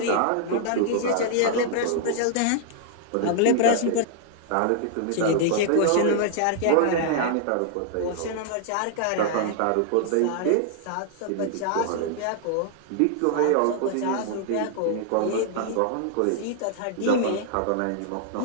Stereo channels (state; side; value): different; both; correlation -0.01